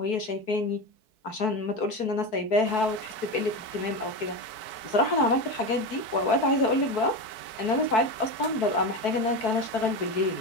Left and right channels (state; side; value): late; right; 4.6 ms